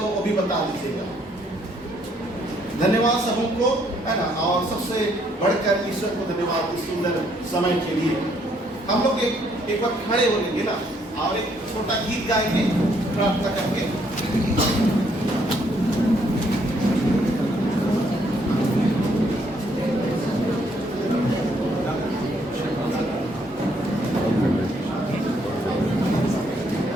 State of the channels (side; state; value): both; normal; correlation 0.69